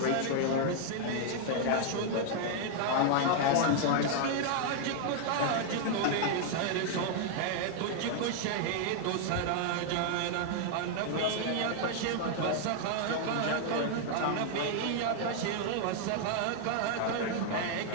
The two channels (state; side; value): different; both; correlation 0.00